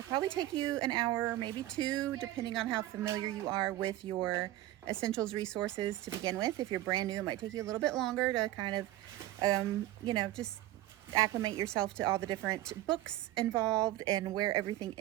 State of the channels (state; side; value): quieter; left; 15.2 dB